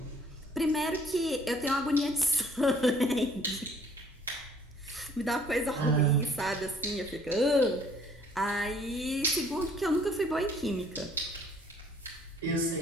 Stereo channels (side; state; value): both; normal; correlation 0.59